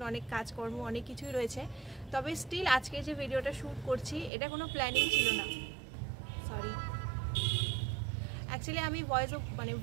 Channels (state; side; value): drops out; left; at 4.3 s